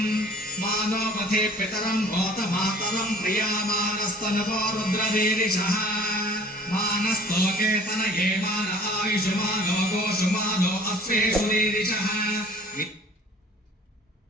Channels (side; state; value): both; normal; correlation 0.49